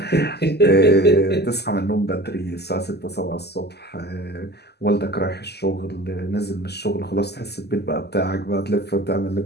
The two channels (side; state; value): right; late; 0.48 ms